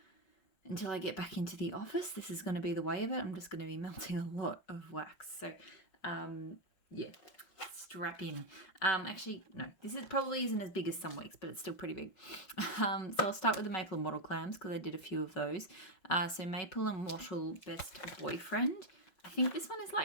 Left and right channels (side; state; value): right; late; 5.6 ms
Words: I get back into the office, this is going to be the way of it. I'm just going to be melting a lot of wax. So yeah, strap in. Actually, no, this probably isn't as big as some weeks, but it's still pretty big. So I'll start with the maple and wattle clams because I did a few of those. So maple and wattle best boyfriend. I think this one is